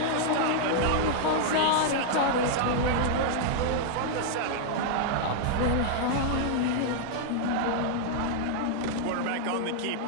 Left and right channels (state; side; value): different; both; correlation -0.01